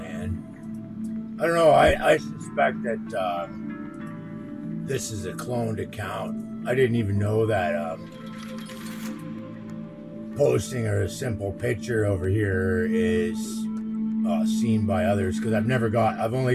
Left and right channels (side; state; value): both; identical; correlation 1.00